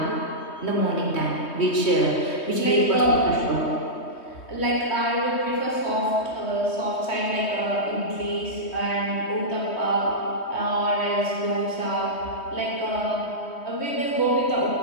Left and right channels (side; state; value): right; late; 3.2 ms